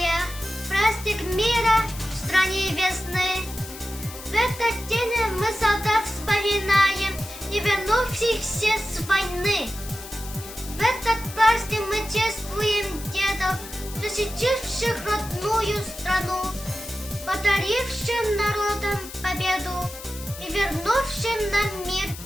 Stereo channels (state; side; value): noise; left; hiss, 13 dB below the sound